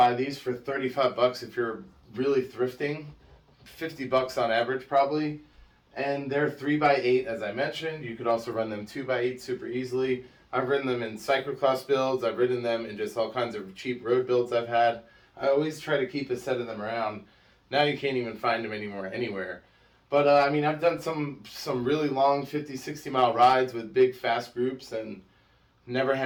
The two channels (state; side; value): identical; both; correlation 1.00